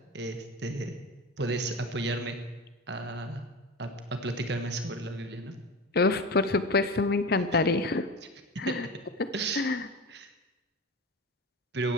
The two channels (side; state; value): both; normal; correlation 0.27